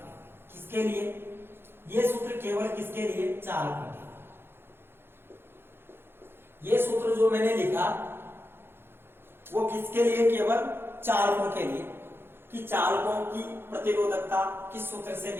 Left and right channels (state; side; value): late; left; 0.11 ms